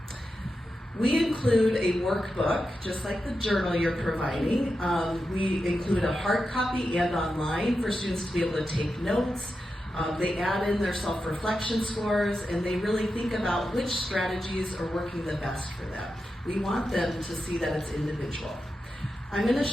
We include a workbook, just like the journal you're providing. We include a hard copy and online for students to be able to take notes. They add in their self-reflection scores, and they really think about which strategies are working the best for them. We want them to see that it's individual. I'm going to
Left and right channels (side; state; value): both; normal; correlation 0.89